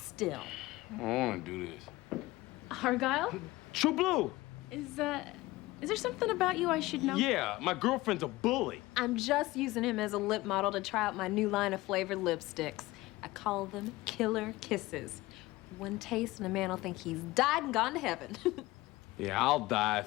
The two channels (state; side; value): quieter; right; 19.3 dB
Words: I don't want to do this. Argyle? True Blue. Is there something about you I should know? Yeah, my girlfriend's a bully. I'm just using him as a lip model to try out my new line of flavored lipsticks. I call them Killer Kisses. One taste and a man will think he's died and gone to heaven. Yeah, I'll die